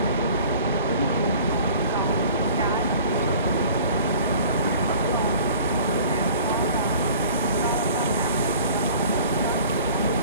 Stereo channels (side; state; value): both; inverted; correlation -0.47